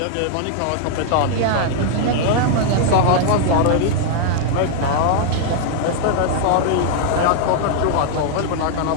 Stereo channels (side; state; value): both; different; correlation -0.01